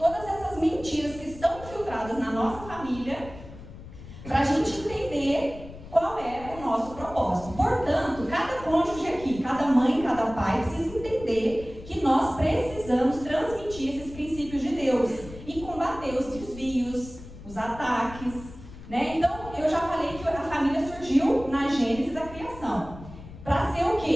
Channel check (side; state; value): left; noise; rumble, 15 dB below the sound